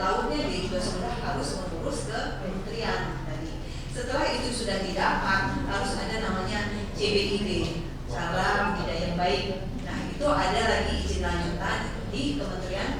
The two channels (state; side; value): identical; both; correlation 1.00